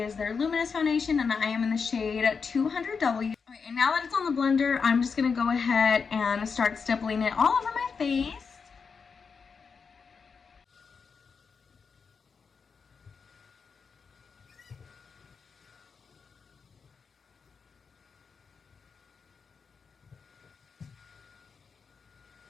their luminous foundation, and I am in the shade 200W. Okay, and now that it's on the blender, I'm just going to go ahead and start stippling it all over my face.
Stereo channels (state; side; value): quieter; right; 5.5 dB